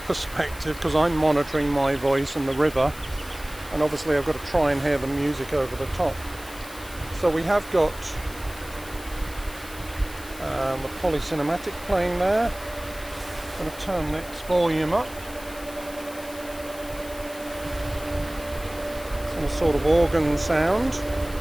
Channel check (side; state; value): left; noise; hiss, 17 dB below the sound